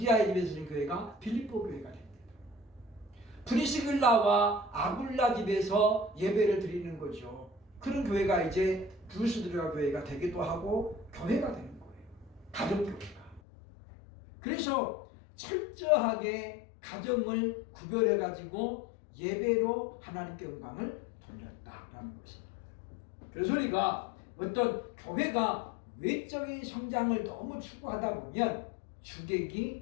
집에서 드리는 교회가 빌립보 교회가 됩니다. 프리스길라와 아굴라 집에서 예배를 드리는 거죠. 그런 교회가 이제 루스드라 교회가 되기도 하고 교회가 되는 거예요. 가정교회가. 그래서 철저하게 가정을 구별해가지고 예배로 하나님께 영광을 돌렸다라는 것입니다. 그래서 우리가 어떤 교회가 외적인 성장을 너무 추구하다 보면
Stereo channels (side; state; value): right; drops out; at 13.4 s